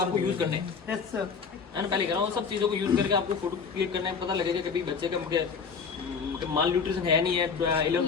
यूज करने हैं, है ना। पहले कह रहा हूँ सब चीज़ों को यूज करके आपको फोटो क्लिक करना है, पता लगेगा कभी बच्चे का माल न्यूट्रिशन है नहीं है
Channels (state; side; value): quieter; right; 5.7 dB